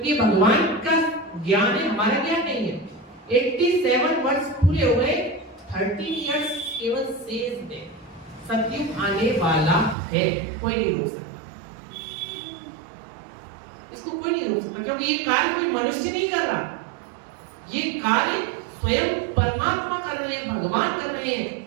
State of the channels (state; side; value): drops out; left; at 10.0 s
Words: भगवान का ज्ञान है, हमारा ज्ञान नहीं है। 87 वर्ष पूरे हो गए, 30 इयर्स केवल शेष है। सतयुग आने वाला है, कोई नहीं रोक सकता इसको, कोई नहीं रोक सकता, क्योंकि ये कार्य कोई मनुष्य नहीं कर रहा, ये कार्य स्वयं परमात्मा कर रहे हैं, भगवान कर रहे हैं।